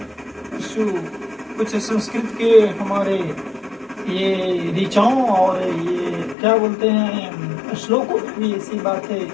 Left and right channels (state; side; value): drops out; right; at 6.4 s